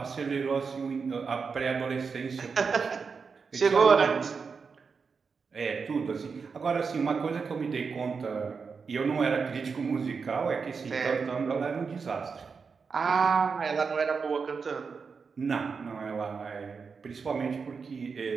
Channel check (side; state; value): left; quieter; 5.3 dB